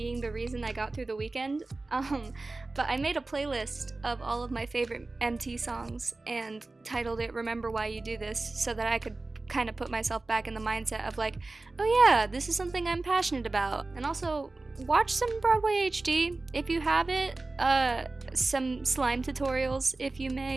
the reason I got through the weekend. But I made a playlist of all of my favorite MT songs and titled it Remember Why You Do This so that I could kind of put myself back in the mindset of like, oh yeah, this is something I'm passionate about. And also, watch some Broadway HD if you have it. Some slime tutorials if you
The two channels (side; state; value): left; quieter; 3.3 dB